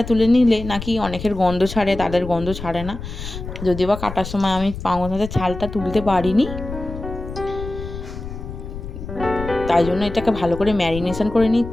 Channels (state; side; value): noise; left; rumble, 9 dB below the sound